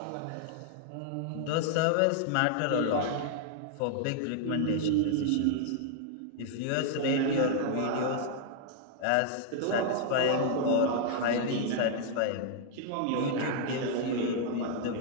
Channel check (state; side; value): different; both; correlation -0.01